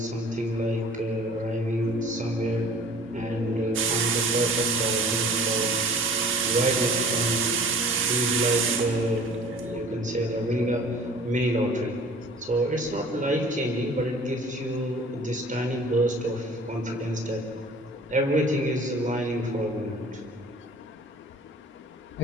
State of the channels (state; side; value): normal; both; correlation 0.47